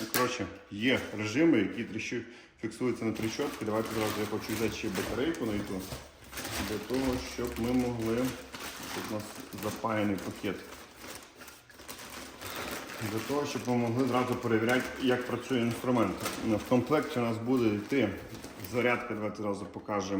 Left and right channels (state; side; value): identical; both; correlation 1.00